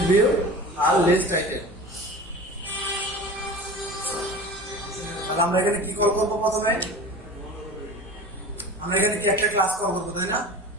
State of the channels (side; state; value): both; normal; correlation 0.36